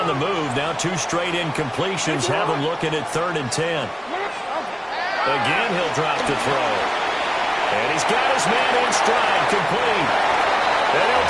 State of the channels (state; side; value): identical; both; correlation 1.00